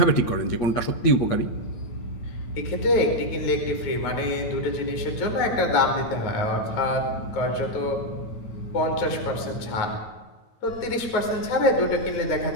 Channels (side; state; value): right; late; 9.0 ms